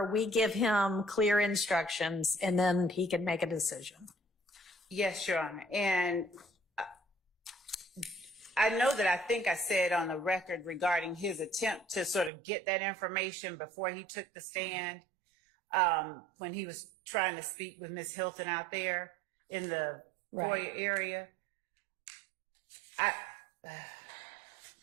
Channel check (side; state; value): left; drops out; at 12.3 s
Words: we give him clear instructions and then he can make a decision. Yes, Your Honor. And I know that I think I said on the record regarding his attempt to sort of get that information before he took the stand, when he was trying to speak with Ms. Hilton out there in the foyer area.